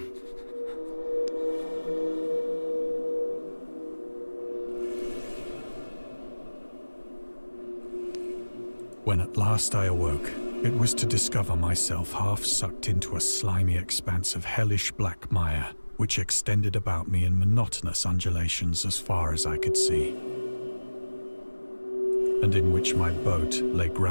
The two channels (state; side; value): inverted; both; correlation -1.00